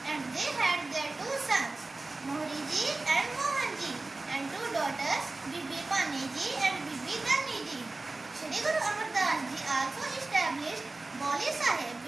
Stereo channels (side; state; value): left; quieter; 3.2 dB